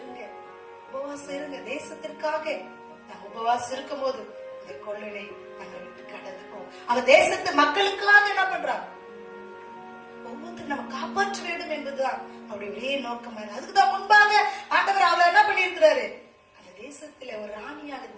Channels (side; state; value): both; identical; correlation 1.00